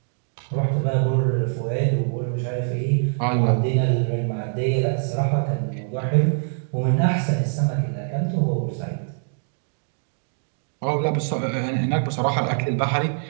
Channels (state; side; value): silent; left; digital silence